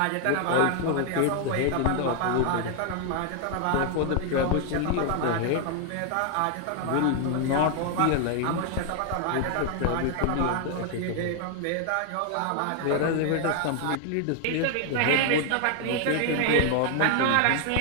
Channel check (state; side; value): different; both; correlation 0.00